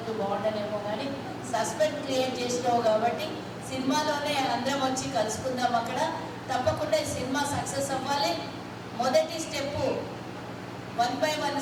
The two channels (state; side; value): identical; both; correlation 1.00